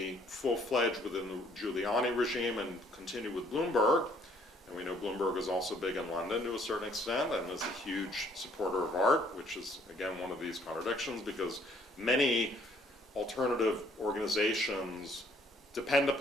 full-fledged within the Giuliani regime and continued with Bloomberg. And we know Bloomberg is also big in London to a certain extent and is a huge supporter of art, which is, again, one of these contradictions, because many alternative organizations depend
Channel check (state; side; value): normal; both; correlation 0.63